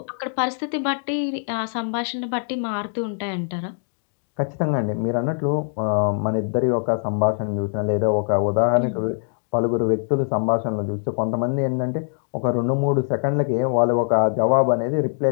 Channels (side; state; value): right; silent; digital silence